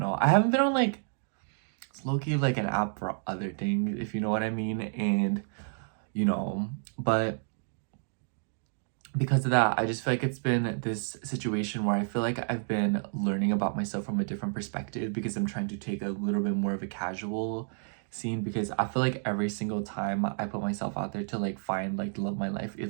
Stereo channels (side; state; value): left; silent; digital silence